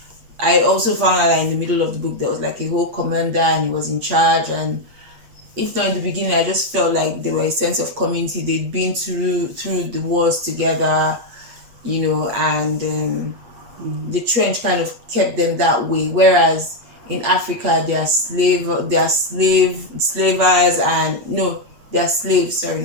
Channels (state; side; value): late; left; 8.3 ms